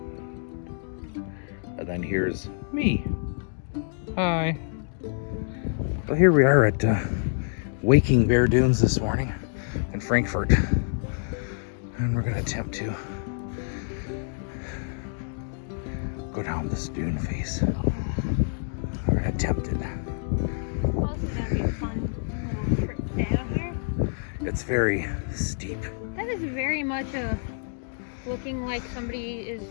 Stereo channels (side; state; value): right; silent; digital silence